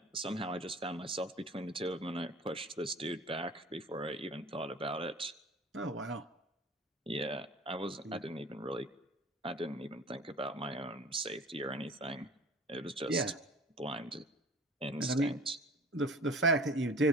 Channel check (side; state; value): both; normal; correlation 0.43